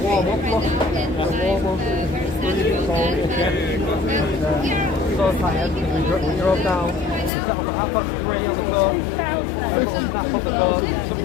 Warm up, look. Warm up. So tired because we drove down. We set up at 3:30 on the coast. Everyone snapped up the coast. Some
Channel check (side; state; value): right; drops out; at 7.3 s